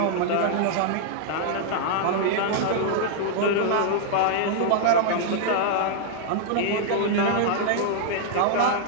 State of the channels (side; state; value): both; different; correlation 0.00